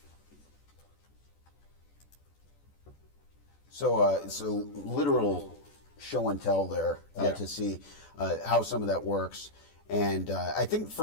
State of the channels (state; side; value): late; right; 14 ms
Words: So it's a literal show and tell there to see how some of that works. And I think